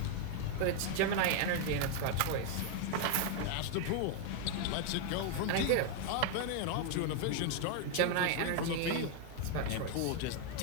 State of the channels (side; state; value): both; different; correlation 0.01